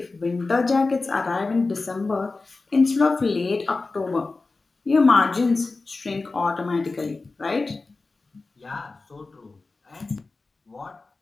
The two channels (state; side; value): quieter; right; 3.7 dB